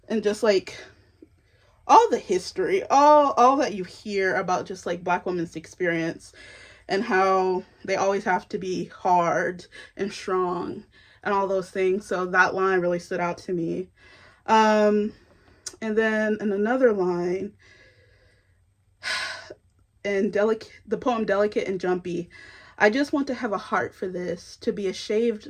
and just like all the history, all that you hear about just like Black women's experience, and how they always have to be hard and strong and all those things. So that line really stood out to me. And then in another line, in the poem "Delicate and Jumpy," "I just want to have a heart for this, to be a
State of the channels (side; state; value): both; identical; correlation 1.00